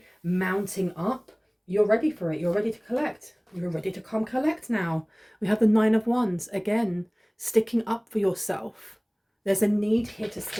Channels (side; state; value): both; identical; correlation 1.00